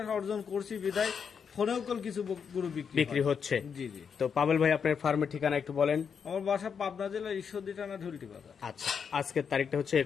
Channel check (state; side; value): quieter; right; 6.7 dB